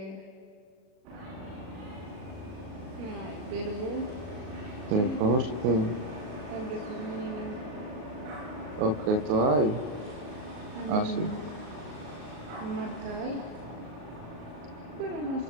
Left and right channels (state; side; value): late; left; 38 ms